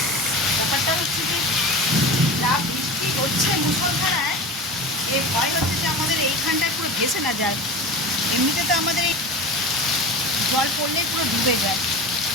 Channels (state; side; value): normal; both; correlation 0.30